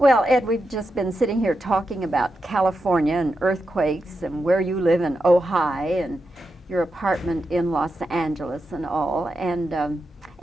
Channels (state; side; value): normal; both; correlation 0.88